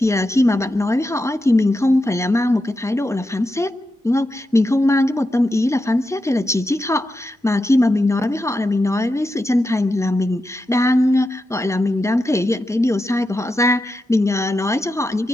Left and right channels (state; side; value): normal; both; correlation 0.88